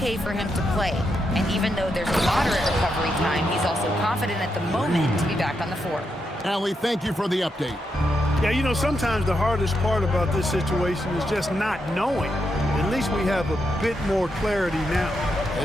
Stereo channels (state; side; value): normal; both; correlation 0.83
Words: for him to play. And even though there's a moderate recovery time, he's also confident at the moment to be back on the floor. Allie, thank you for the update. Yeah, you know, sometimes the hardest part about this situation is just not knowing. At least we have a bit more clarity now.